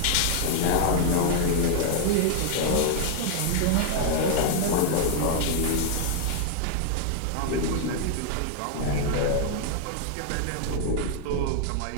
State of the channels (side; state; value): both; different; correlation -0.01